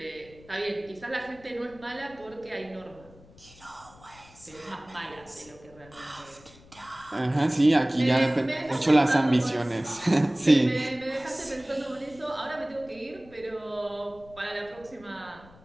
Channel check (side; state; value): left; noise; rumble, 24 dB below the sound